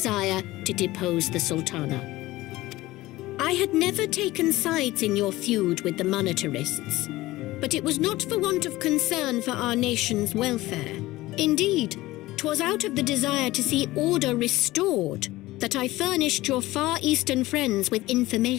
to depose the Sultana. I had never taken sides in your feud with the monetarists, but it was not for want of concern for our nation's welfare. Indeed, 'twas out of the desire to see order restored that I furnished your Far Eastern friends with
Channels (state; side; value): quieter; right; 18.1 dB